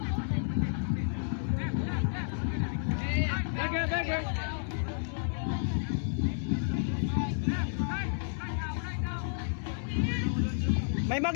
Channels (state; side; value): silent; right; digital silence